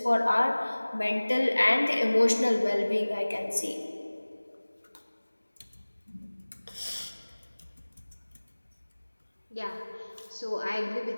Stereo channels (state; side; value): inverted; both; correlation -1.00